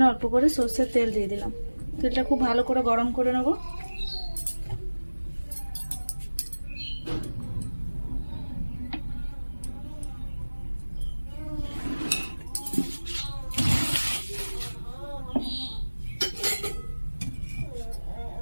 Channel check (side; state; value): both; inverted; correlation -1.00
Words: অল্প করে সর্ষের তেল দিয়ে দিলাম। তেলটা খুব ভালো করে গরম করে নেব।